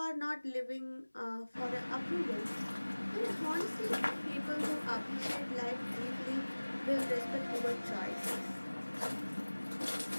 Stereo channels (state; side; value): inverted; both; correlation -1.00